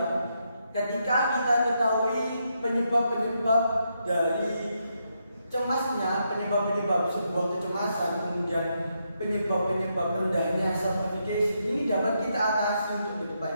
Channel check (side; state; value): both; inverted; correlation -0.80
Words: ketika kita ketahui penyebab-penyebab dari cemasnya, penyebab-penyebab sebuah kecemasan, kemudian penyebab-penyebab rendahnya self-efficacy, ini dapat kita atasi untuk ke